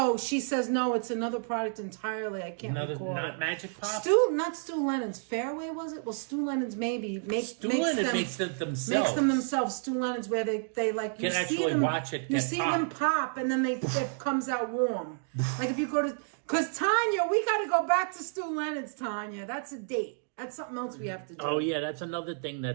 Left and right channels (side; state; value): left; silent; 58 dB below the other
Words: she says no. It's another product entirely. I can't recall. Not Magic Pop. Not Stu Lennon's. Fairway was it? Well, Stu Lennon's maybe makes them themselves. Makes them themselves. Stu Lennon's where they like you can see actually them, watch it. You see them pop, and then it comes out warm. Like if you go to, because Tanya, we got to go back to Stu Lennon's. Tanya, that's a date. That's something else we have to do. Oh, yeah, that's another thing